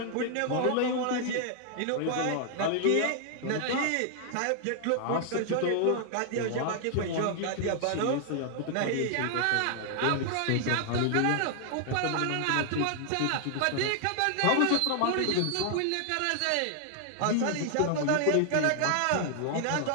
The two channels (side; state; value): both; different; correlation 0.00